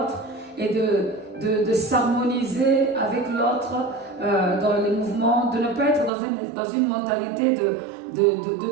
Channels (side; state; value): left; drops out; at 6.1 s